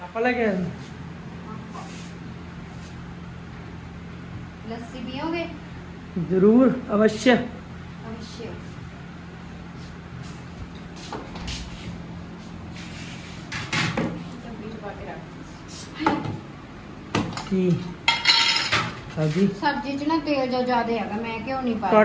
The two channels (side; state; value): both; identical; correlation 1.00